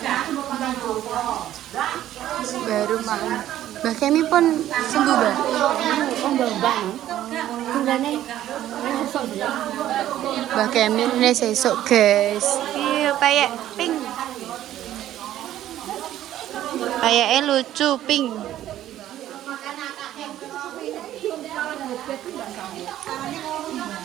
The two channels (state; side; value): quieter; left; 12.7 dB